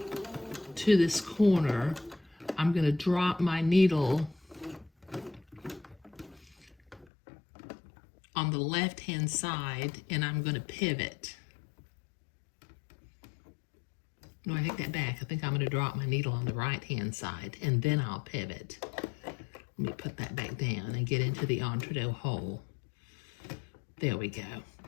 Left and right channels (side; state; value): right; drops out; at 7.1 s